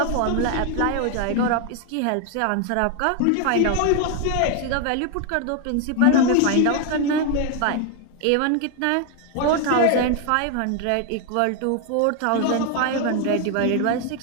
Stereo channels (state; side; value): different; both; correlation 0.01